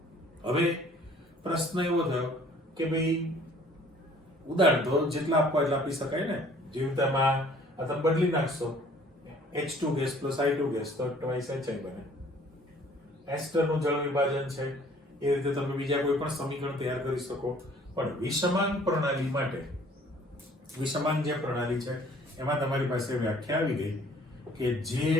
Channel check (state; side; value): normal; both; correlation 0.55